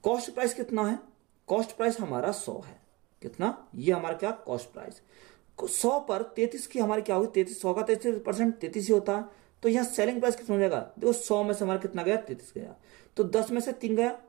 कॉस्ट प्राइस कितना है, कॉस्ट प्राइस हमारा 100 है। कितना, ये हमारा क्या कॉस्ट प्राइस 100 पर 33 की हमारी क्या होगी 33, 100 का 33% 33 ही होता है। तो यहाँ सेलिंग प्राइस कितना हो जाएगा, देखो 100 में से हमारा कितना गया 33 गया, तो 10 में से 3 गया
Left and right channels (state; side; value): quieter; left; 23.5 dB